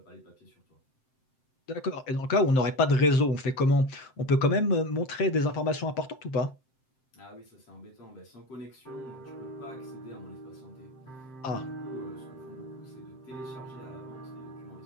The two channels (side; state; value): right; late; 7.7 ms